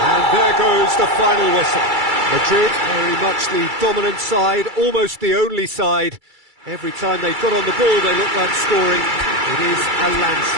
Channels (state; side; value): late; left; 2.3 ms